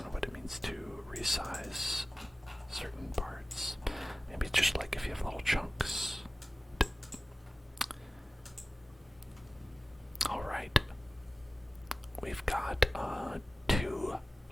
know what it means to resize certain parts. Maybe just like if you have little chunks. Alright. We've got 2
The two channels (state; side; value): normal; both; correlation 0.97